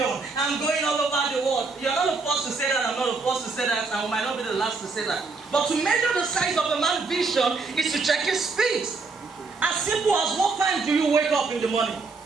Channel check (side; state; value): left; quieter; 4.1 dB